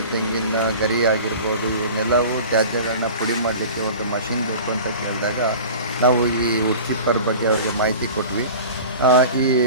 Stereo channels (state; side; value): inverted; both; correlation -0.38